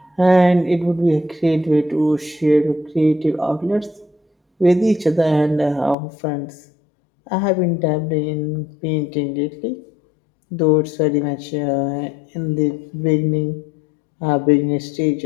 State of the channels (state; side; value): drops out; right; at 6.0 s